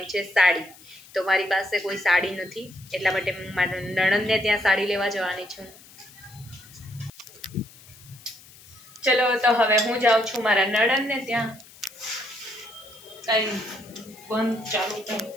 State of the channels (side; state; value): left; noise; hiss, 22 dB below the sound